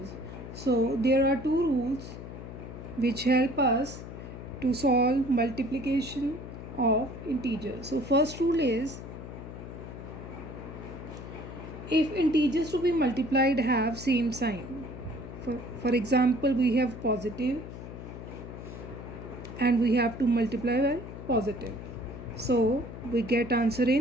So there are two rules which help us to solve multiplication of integers. So first rule is if integers to be multiplied have same sign. For example, we have positive and we have to multiply by positive. So we get answer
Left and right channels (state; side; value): noise; left; hum, 11 dB below the sound